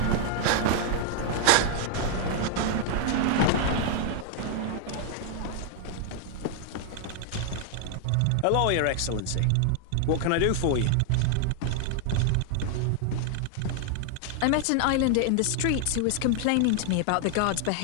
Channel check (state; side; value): different; both; correlation 0.00